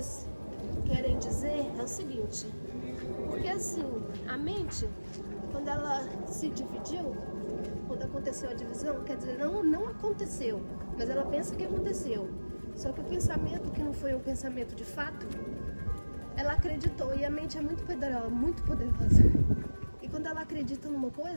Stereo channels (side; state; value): both; inverted; correlation -1.00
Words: querem dizer é o seguinte, porque assim, a mente, quando ela se dividiu, quando aconteceu a divisão, quer dizer, não aconteceu, mas ela pensa que aconteceu. Só que o pensamento, que não foi um pensamento de fato, ela acreditou, e a mente é muito poderosa. E quando ela acredita numa